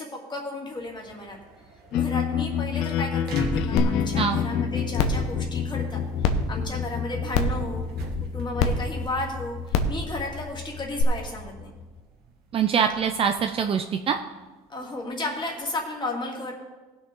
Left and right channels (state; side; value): normal; both; correlation 0.38